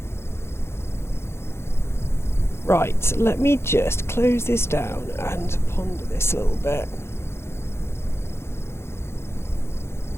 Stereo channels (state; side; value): late; right; 0.12 ms